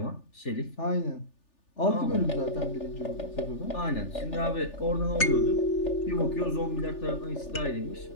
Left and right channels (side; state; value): right; late; 3.4 ms